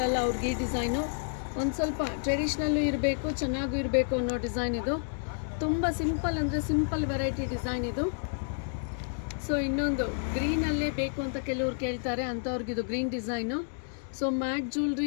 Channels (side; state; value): right; silent; digital silence